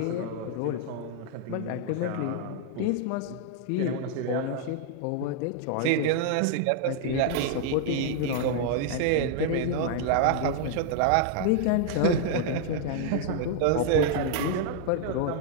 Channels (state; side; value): different; both; correlation 0.00